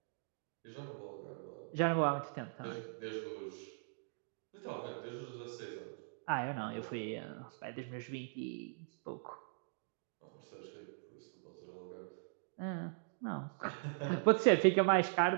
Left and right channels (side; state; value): left; silent; digital silence